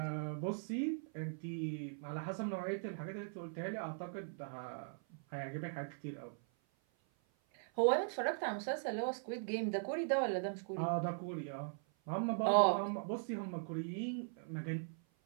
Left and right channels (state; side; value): silent; left; 51 dB below the other